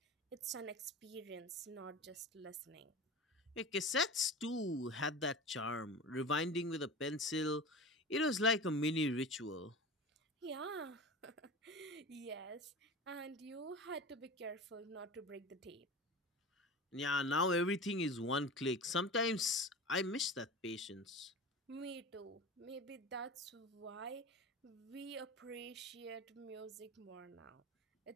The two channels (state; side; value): normal; both; correlation 0.32